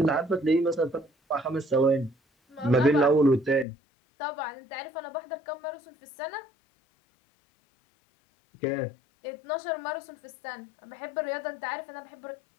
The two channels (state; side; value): drops out; right; at 3.7 s